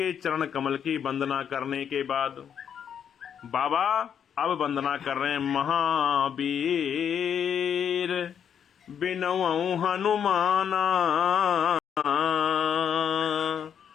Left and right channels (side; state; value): right; quieter; 8.3 dB